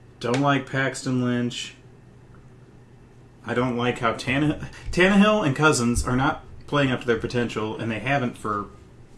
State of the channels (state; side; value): identical; both; correlation 1.00